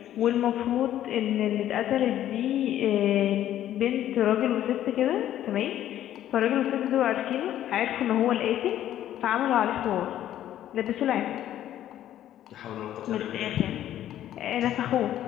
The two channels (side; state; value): right; quieter; 12.0 dB